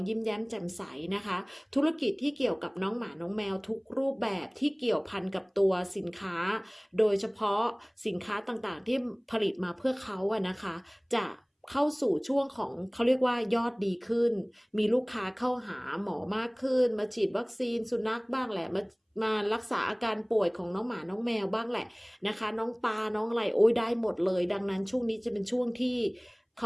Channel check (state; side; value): identical; both; correlation 1.00